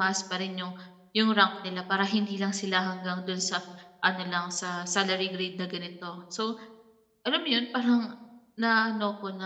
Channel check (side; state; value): both; identical; correlation 1.00